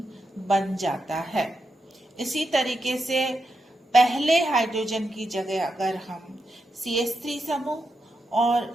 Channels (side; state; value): both; normal; correlation 0.86